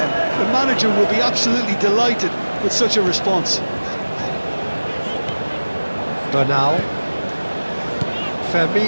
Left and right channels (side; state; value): both; inverted; correlation -1.00